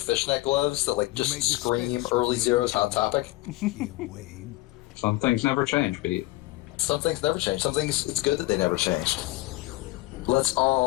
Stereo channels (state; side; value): quieter; right; 19.0 dB